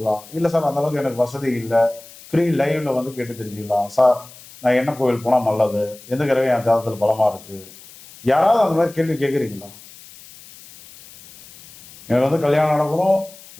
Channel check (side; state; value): left; noise; hiss, 20 dB below the sound